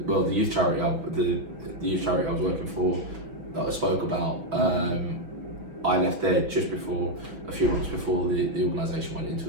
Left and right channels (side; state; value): left; late; 6.1 ms